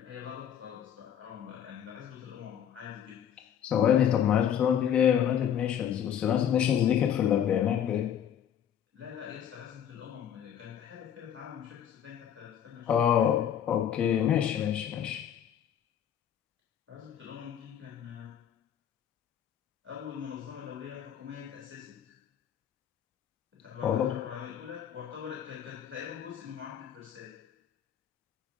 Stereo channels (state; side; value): quieter; right; 9.4 dB